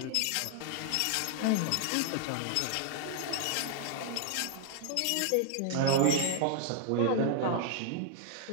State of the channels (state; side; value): different; both; correlation 0.00